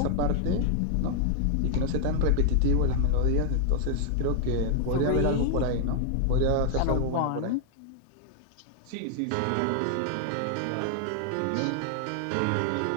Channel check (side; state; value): both; different; correlation 0.00